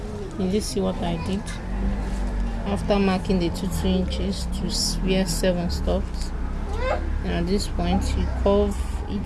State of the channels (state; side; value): identical; both; correlation 1.00